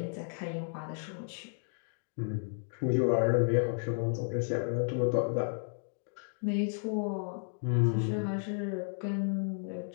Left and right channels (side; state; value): right; silent; digital silence